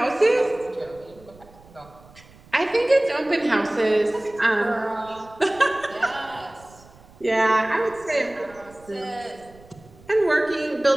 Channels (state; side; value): noise; right; rumble, 24 dB below the sound